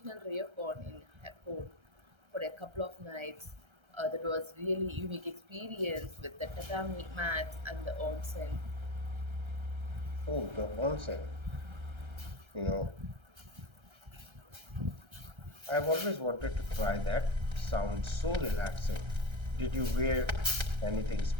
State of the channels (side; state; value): left; late; 1.3 ms